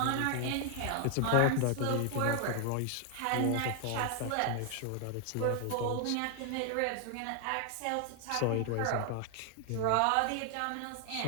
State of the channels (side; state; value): both; different; correlation 0.00